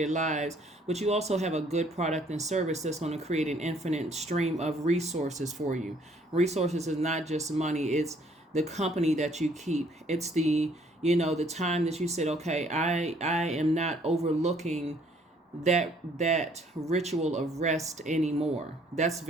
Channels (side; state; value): both; normal; correlation 0.62